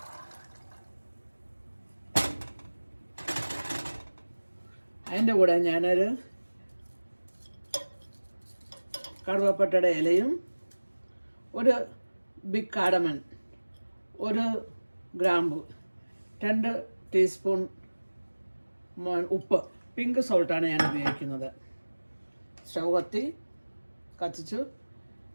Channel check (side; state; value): both; inverted; correlation -1.00